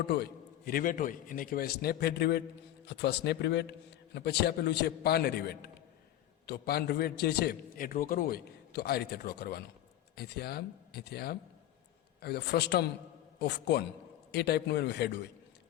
હોય એને કહેવાય સ્નેપ હેડ રિવેટ અથવા સ્નેપ રિવેટ. અને પછી આપેલું છે પાન રિવેટ. તો પાન રિવેટ જે છે એ ડ્રો કરવું હોય તો આ રીતે ડ્રો કરવાનો. અહીંથી આમ, અહીંથી આમ, આવી રીતે ફ્રસ્ટમ ઓફ કોન એ ટાઈપનું એનું હેડ હોય.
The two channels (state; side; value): quieter; right; 13.0 dB